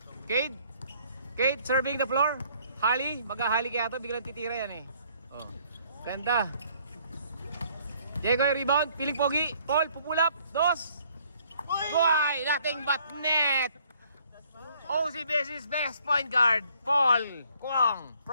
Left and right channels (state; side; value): inverted; both; correlation -0.63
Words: Cade. Kate, serving the floor. Hali, maghahali kaya to, biglang titira yan eh. Oh. Ganda. Diego, rebound, piling pogi. Paul, pupulap. 2. Why? Nothing but net. OCBS's best point guard, Paul Kuang